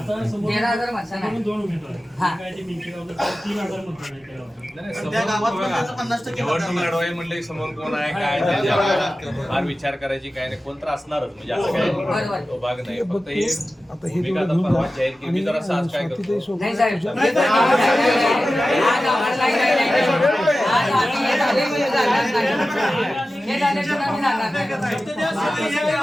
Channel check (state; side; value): normal; both; correlation 0.95